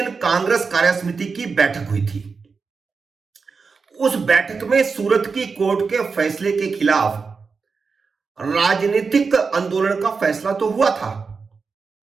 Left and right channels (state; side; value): quieter; left; 5.0 dB